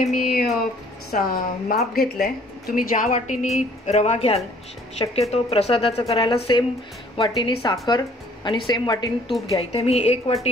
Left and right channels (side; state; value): both; normal; correlation 0.58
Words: मी माप घेतलंय। तुम्ही ज्या वाटीनी रवा घ्याल, शक्यतो प्रसादाचं करायला सेम वाटीनी साखर आणि सेम वाटीनी तूप घ्या। इथे मी एक